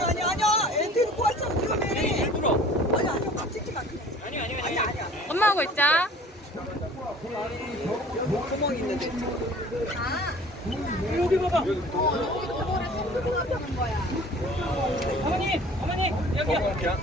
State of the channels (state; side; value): normal; both; correlation 0.48